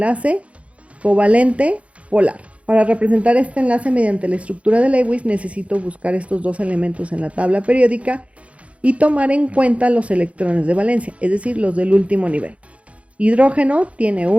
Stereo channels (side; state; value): left; late; 0.063 ms